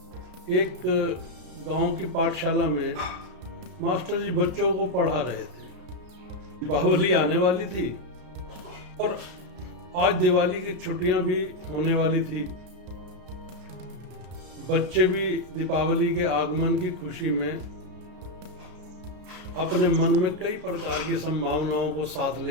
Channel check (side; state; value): left; late; 33 ms